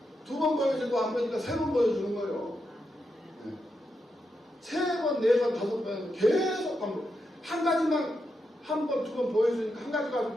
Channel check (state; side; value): normal; both; correlation 0.85